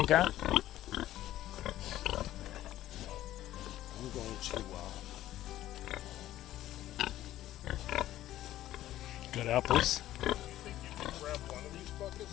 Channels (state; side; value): quieter; right; 13.8 dB